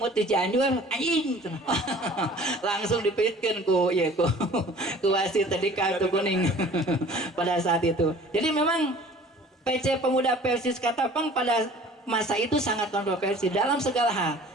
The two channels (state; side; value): normal; both; correlation 0.48